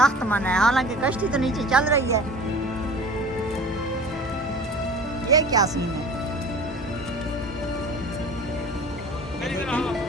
मना है। हालांकि कश्ती तो नीचे चल रही है, ये क्या सीन है?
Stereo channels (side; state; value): both; normal; correlation 0.41